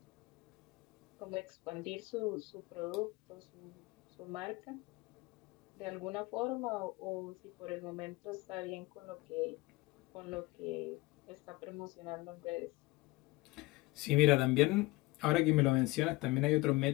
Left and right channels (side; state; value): right; quieter; 20.8 dB